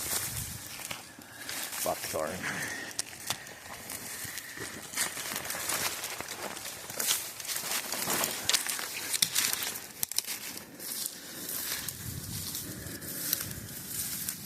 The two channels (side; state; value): both; identical; correlation 1.00